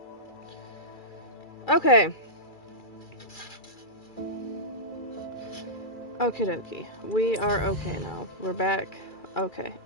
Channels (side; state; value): right; late; 2.3 ms